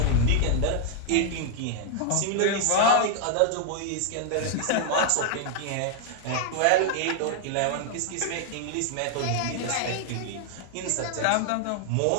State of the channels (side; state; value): both; different; correlation 0.00